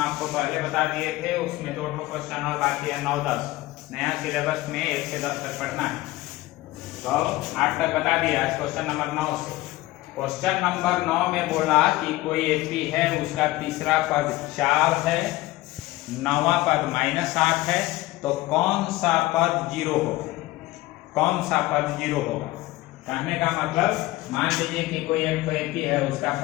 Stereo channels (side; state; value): right; quieter; 18.2 dB